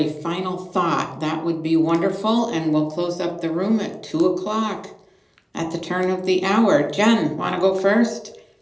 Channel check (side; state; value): both; identical; correlation 1.00